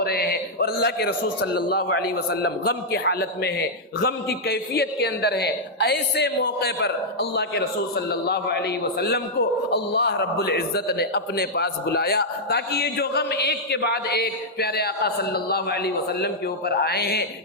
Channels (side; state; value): both; normal; correlation -0.06